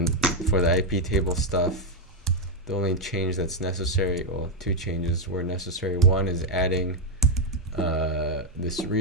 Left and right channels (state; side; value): normal; both; correlation 0.02